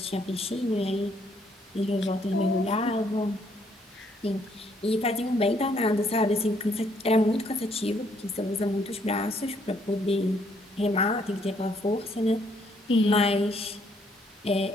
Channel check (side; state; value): both; normal; correlation 0.68